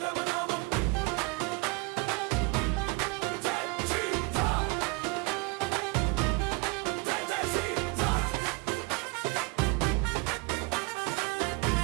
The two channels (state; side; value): quieter; left; 26.9 dB